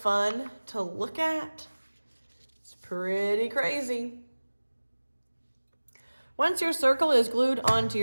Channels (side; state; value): both; inverted; correlation -1.00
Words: to look at? It's pretty crazy. Once your circle is glued onto